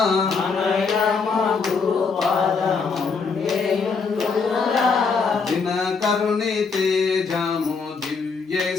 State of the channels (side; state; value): right; quieter; 5.0 dB